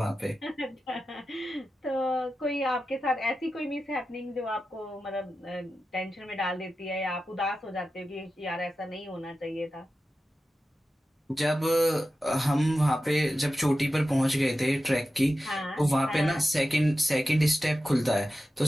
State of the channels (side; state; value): both; normal; correlation 0.92